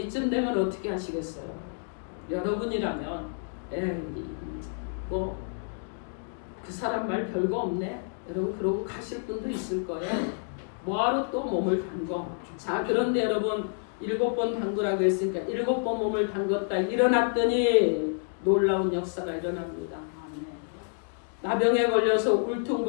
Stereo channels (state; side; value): silent; right; digital silence